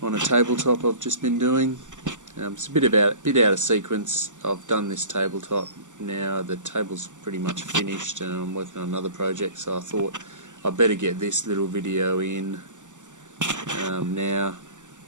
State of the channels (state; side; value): late; left; 0.86 ms